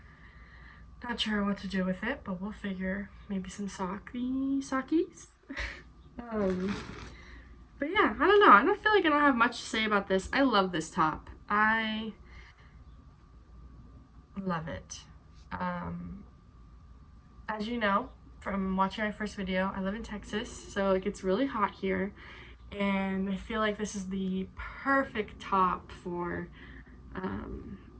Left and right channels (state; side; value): identical; both; correlation 1.00